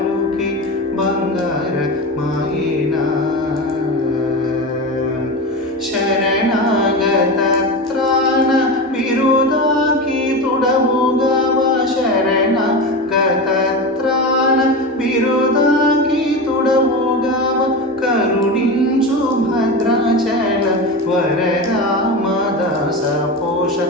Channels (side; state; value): both; normal; correlation 0.23